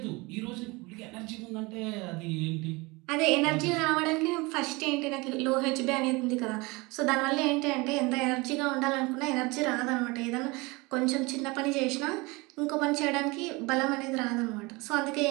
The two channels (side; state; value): left; quieter; 24.9 dB